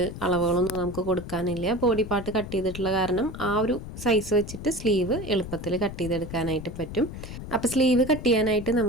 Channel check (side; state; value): left; noise; rumble, 10 dB below the sound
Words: അളവുകളൊന്നും നമുക്ക് കൊടുക്കാനില്ല. ബോഡി പാർട്ട് കട്ട് ചെയ്തിട്ടുള്ള കാരണം ആ ഒരു സൈസ് വെച്ചിട്ട് സ്ലീവ് എളുപ്പത്തിൽ കട്ട് ചെയ്തെടുക്കാനായിട്ട് പറ്റും. അപ്പോൾ സ്ലീവ് കട്ട് ചെയ്യാനായിട്ട്